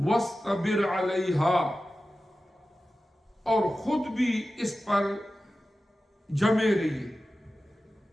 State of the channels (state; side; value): normal; both; correlation 0.94